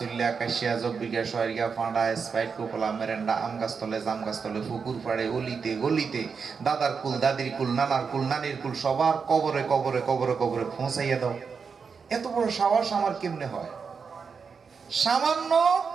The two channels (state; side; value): quieter; left; 5.7 dB